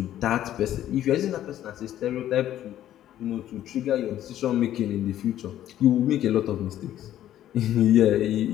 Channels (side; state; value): right; quieter; 12.1 dB